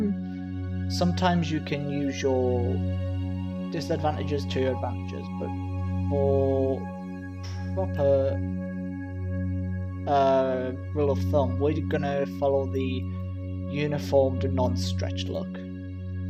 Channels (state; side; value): identical; both; correlation 1.00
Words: you can use your disadvantages to your advantages, but for proper rule of thumb, we're gonna follow the uniformed non-stretched look.